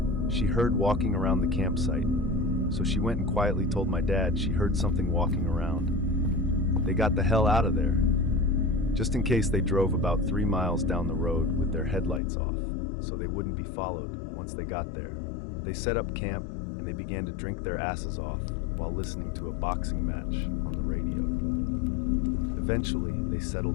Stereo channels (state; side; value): drops out; right; at 12.2 s